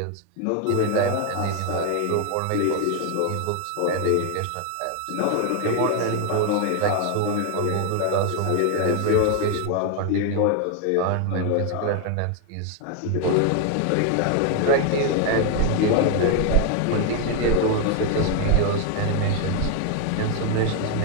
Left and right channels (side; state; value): both; different; correlation 0.01